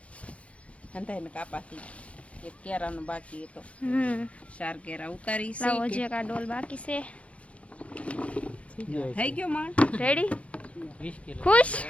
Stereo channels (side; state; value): right; late; 0.063 ms